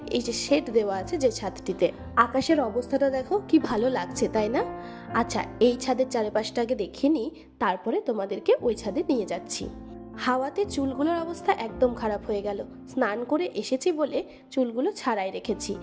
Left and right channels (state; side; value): identical; both; correlation 1.00